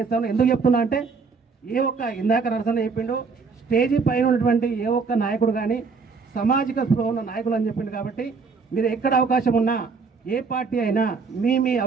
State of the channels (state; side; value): quieter; left; 4.9 dB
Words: ఎందుకు చెప్తున్నా అంటే ఇందాక నరసన్న చెప్పిండు, స్టేజీ పైన ఉన్నటువంటి ఏ ఒక్క నాయకుడు కానీ సామాజిక స్పృహ ఉన్న నాయకులు అని చెప్పిండు. కాబట్టి మీరు ఎక్కడ అవకాశం ఉన్నా ఏ పార్టీ అయినా మీ